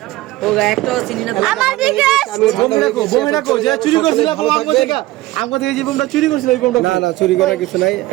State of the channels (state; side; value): quieter; left; 17.6 dB